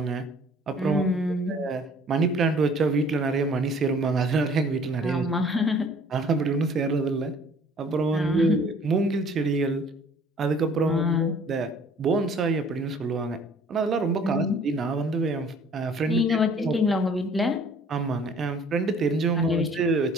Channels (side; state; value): both; normal; correlation 0.54